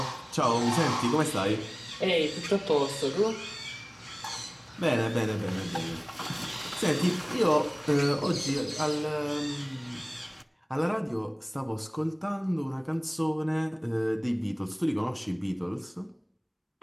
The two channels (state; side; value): identical; both; correlation 1.00